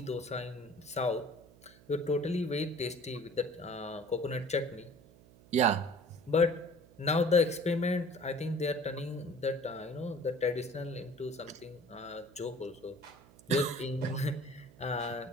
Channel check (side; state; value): right; noise; hum, 24 dB below the sound